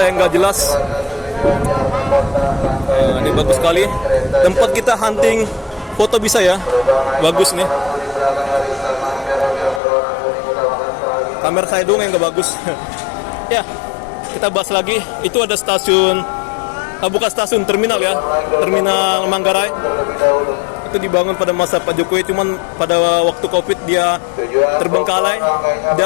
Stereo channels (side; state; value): right; drops out; at 9.8 s